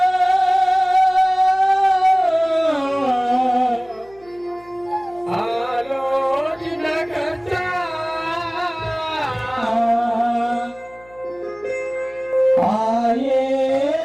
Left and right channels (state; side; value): noise; left; hum, 27 dB below the sound